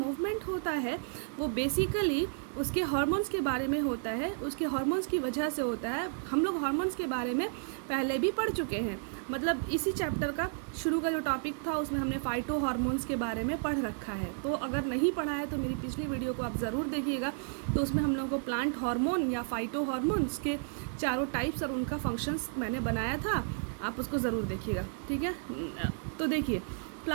होता है वो बेसिकली उसके हार्मोन्स के बारे में होता है, उसके हार्मोन्स की वजह से होता है। हम लोग हार्मोन्स के बारे में पहले भी पढ़ चुके हैं, मतलब इसी चैप्टर का शुरू का जो टॉपिक था उसमें हमने फाइटो हार्मोन्स के बारे में पढ़ रखा है। तो अगर नहीं पढ़ा है तो मेरी पिछली वीडियो को आप ज़रूर देखिएगा। तो उसमें हम लोगों को प्लांट हार्मोन या फाइटो हार्मोन्स के चारों टाइप्स और उनका फंक्शंस मैंने बनाया था, आप उसको ज़रूर देखिएगा, ठीक है। तो देखिए,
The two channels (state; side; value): silent; left; 56 dB below the other